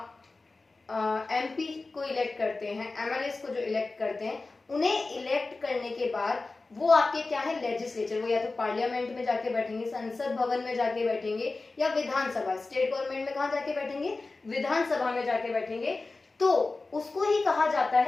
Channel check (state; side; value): quieter; right; 3.5 dB